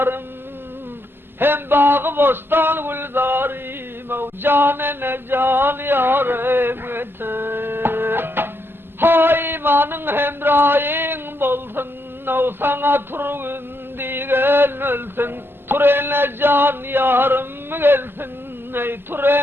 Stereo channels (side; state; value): left; late; 0.11 ms